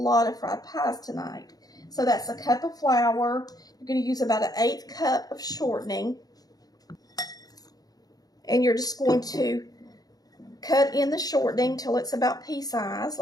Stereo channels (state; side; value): late; right; 0.18 ms